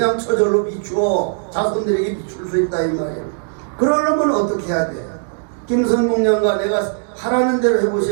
저절로 비추어 자손들에게 비출 수 있다 이 말이에요. 그러려면 어떻게 해야 돼? 김선봉년과 내가 하라는 대로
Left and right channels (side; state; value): left; silent; digital silence